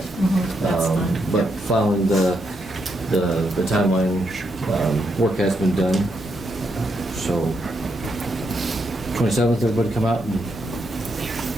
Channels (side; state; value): both; normal; correlation 0.79